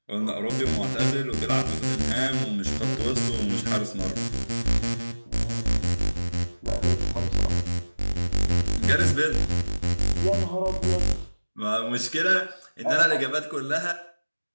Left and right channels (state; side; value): inverted; both; correlation -1.00